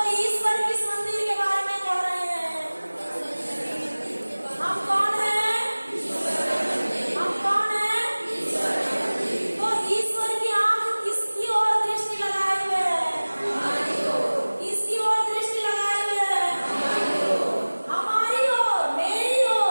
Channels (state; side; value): inverted; both; correlation -1.00